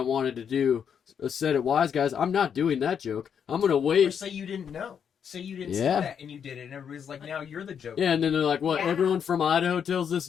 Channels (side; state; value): right; quieter; 7.7 dB